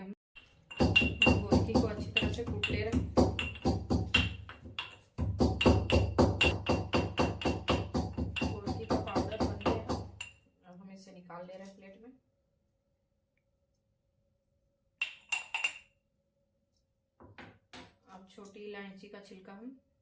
हम गोलकी को अच्छी तरह से कूट ले रहे हैं। गोलकी का पाउडर बन गया। अब हम इसे निकाल ले रहे हैं प्लेट में। अब छोटी इलायची का छिलका हम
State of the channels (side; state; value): both; identical; correlation 1.00